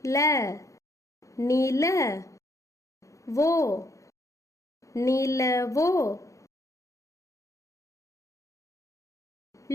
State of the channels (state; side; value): late; right; 0.15 ms